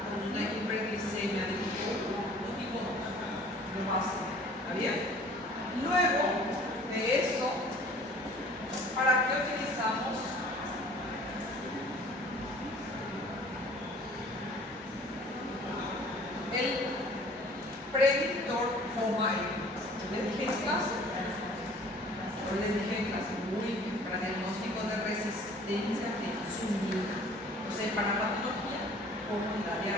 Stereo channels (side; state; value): both; normal; correlation 0.51